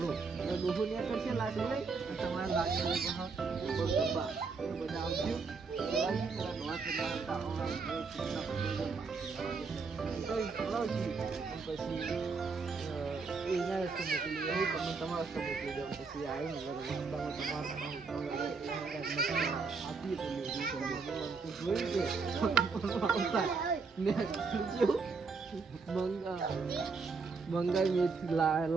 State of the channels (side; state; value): left; quieter; 4.7 dB